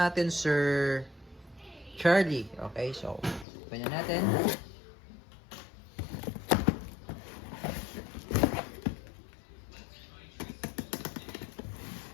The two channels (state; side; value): drops out; right; at 3.5 s